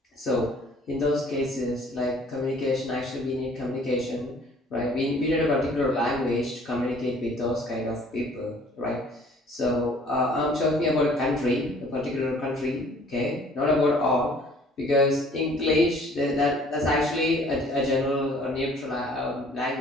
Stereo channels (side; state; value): both; normal; correlation 0.55